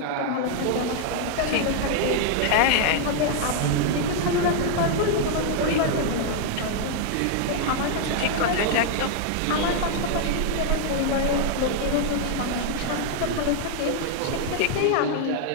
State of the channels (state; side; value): different; both; correlation 0.00